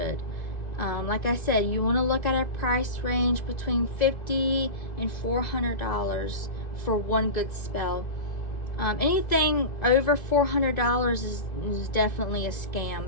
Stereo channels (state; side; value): late; right; 1.9 ms